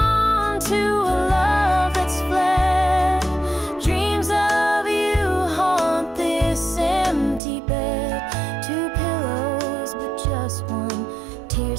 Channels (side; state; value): left; drops out; at 7.4 s